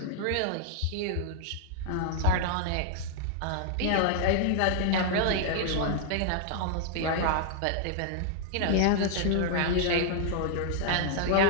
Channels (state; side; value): different; both; correlation -0.01